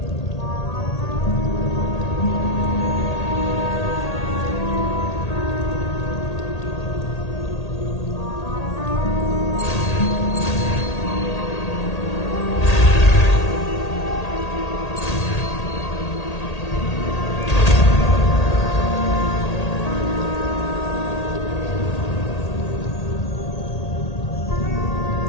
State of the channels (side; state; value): right; late; 1.8 ms